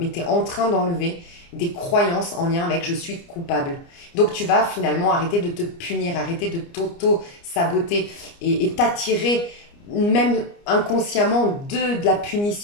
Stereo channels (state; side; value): late; right; 29 ms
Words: tu es en train d'enlever des croyances en lien avec je suis coupable. Donc tu vas finalement arrêter de te punir, arrêter de t'auto-saboter et t'attirer même inconsciemment de la